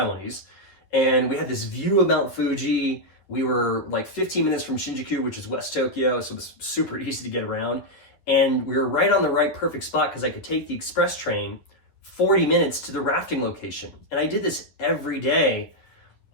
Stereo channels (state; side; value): late; right; 11 ms